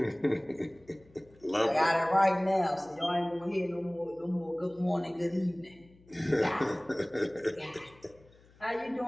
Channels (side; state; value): left; noise; hum, 27 dB below the sound